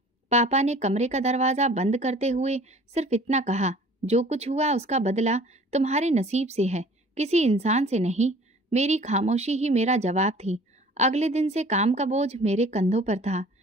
पापा ने कमरे का दरवाज़ा बंद करते हुए सिर्फ इतना कहा, जो कुछ हुआ उसका बदला तुम्हारे नसीब से है, किसी इंसान से नहीं। मेरी खामोशी ही मेरा जवाब थी। अगले दिन से काम का बोझ मेरे कंधों पर था।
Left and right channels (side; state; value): both; normal; correlation 0.49